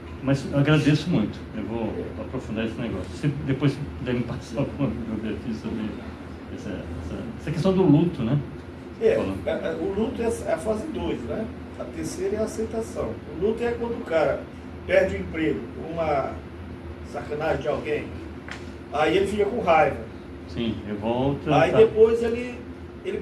Mas eu agradeço muito, eu vou aprofundar esse negócio. Se depois você puder me passar alguma bibliografia sobre essa questão do luto, né? O luto é a fase 2, né? A terceira é a aceitação. O luto é quando o cara perde o emprego, uma sacanagem de alguém, aí ele fica com raiva. Sim, revolta. Aí depois ele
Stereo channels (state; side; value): identical; both; correlation 1.00